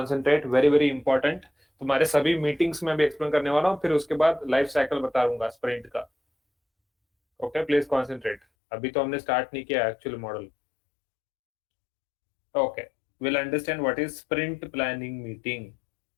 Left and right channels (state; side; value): drops out; right; at 8.4 s